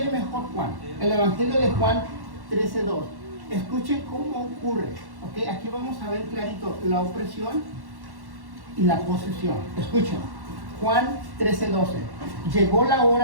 mejor Juan, el Evangelio de Juan 13:2. Escuchen cómo ocurre, ¿ok? Aquí vamos a ver clarito la opresión y la posesión. Escuchen, Juan 13:12. Llegó la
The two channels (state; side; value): late; left; 1.1 ms